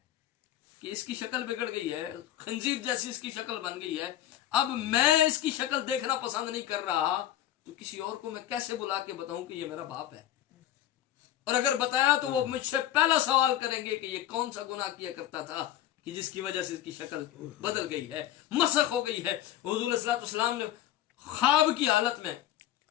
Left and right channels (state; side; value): quieter; right; 12.5 dB